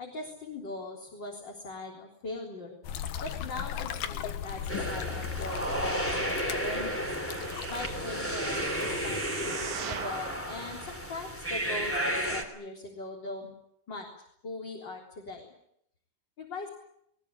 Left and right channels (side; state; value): both; normal; correlation -0.08